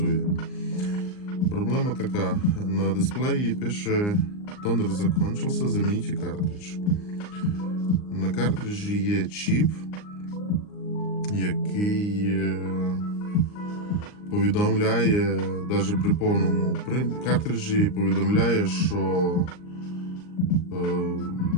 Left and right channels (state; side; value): late; right; 39 ms